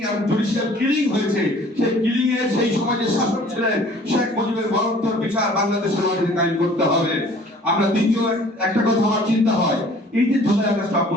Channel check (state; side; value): normal; both; correlation 0.52